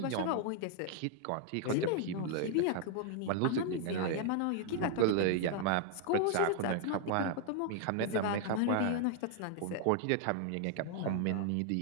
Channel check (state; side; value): different; both; correlation 0.00